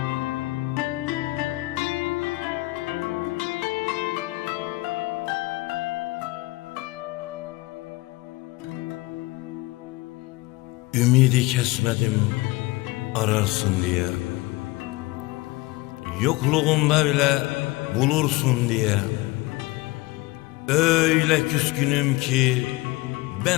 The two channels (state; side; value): quieter; right; 21.1 dB